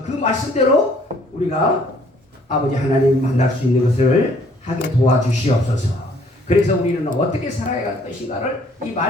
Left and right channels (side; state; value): both; normal; correlation 0.61